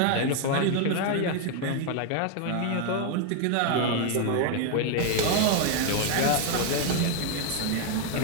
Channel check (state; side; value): different; both; correlation 0.00